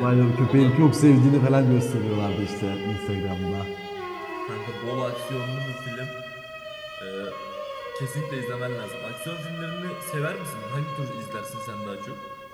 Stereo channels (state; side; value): identical; both; correlation 1.00